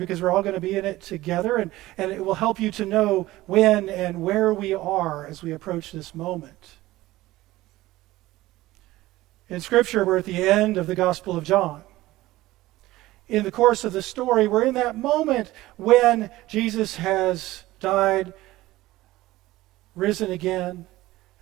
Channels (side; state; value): left; quieter; 17.4 dB